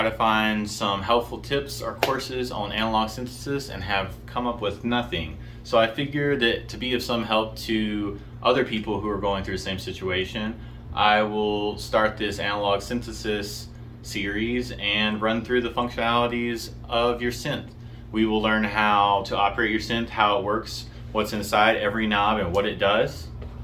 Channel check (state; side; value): identical; both; correlation 1.00